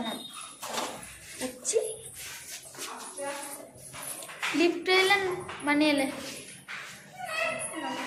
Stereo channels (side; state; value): both; identical; correlation 1.00